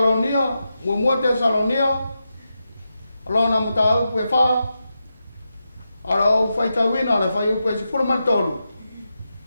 mua Tesalonia, alona mata au pue wha, ara au whaitawina le whai upe se fura martolu.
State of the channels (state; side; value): inverted; both; correlation -0.88